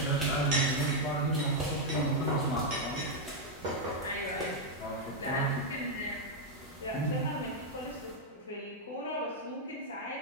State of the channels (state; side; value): normal; both; correlation -0.01